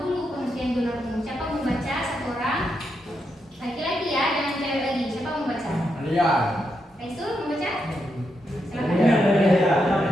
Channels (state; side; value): normal; both; correlation 0.83